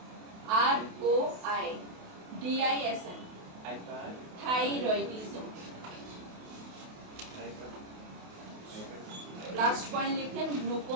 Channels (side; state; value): left; late; 28 ms